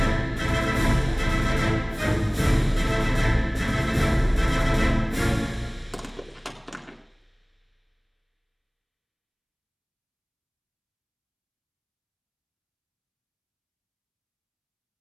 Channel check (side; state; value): both; identical; correlation 1.00